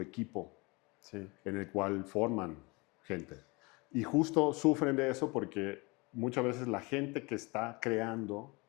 equipo, sí. En el cual forman gente. Y justo sufren de eso porque muchas veces la gente que está creando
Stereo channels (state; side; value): quieter; right; 26.7 dB